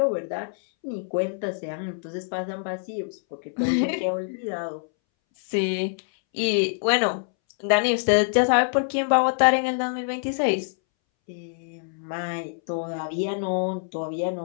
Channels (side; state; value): right; silent; 61 dB below the other